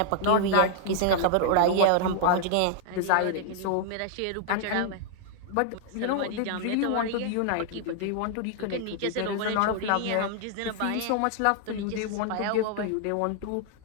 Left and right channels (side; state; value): both; different; correlation -0.01